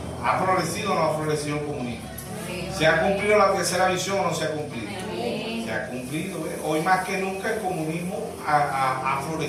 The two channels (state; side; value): identical; both; correlation 1.00